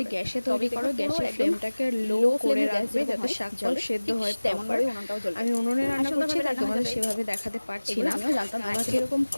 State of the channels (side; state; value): both; inverted; correlation -1.00